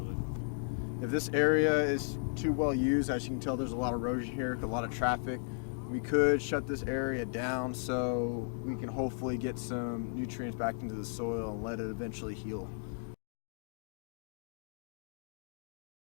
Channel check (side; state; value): right; silent; digital silence